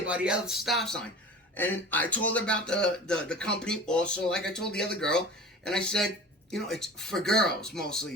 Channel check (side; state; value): both; normal; correlation 0.38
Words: by the other stop sign. And I told her about the company also, like I told the other girl. And I said, it's for girls